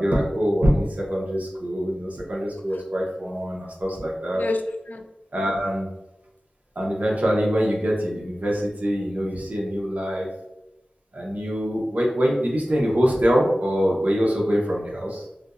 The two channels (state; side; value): normal; both; correlation 0.96